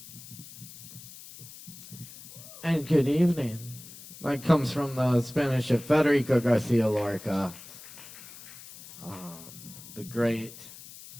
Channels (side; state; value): left; noise; hiss, 16 dB below the sound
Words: And good evening. That comes from the Spanish of Federico Garcia Lorca, the great